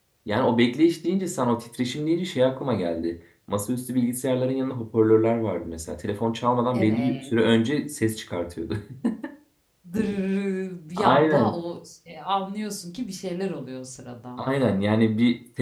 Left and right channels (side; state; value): both; identical; correlation 1.00